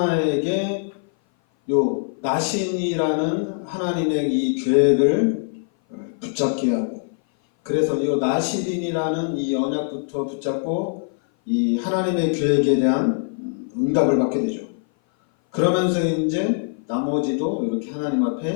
요 나신이라는 하나님의 이 계획을 붙잡게 하고 그래서 이 나신이라는 이 언약부터 붙잡고 이 하나님의 계획에 대한 응답을 받게 되죠. 그러면서 이제 나머지도 이렇게 하나님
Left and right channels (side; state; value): right; silent; 57 dB below the other